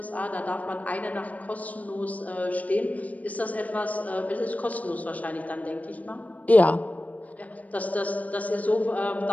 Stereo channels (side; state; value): right; late; 0.072 ms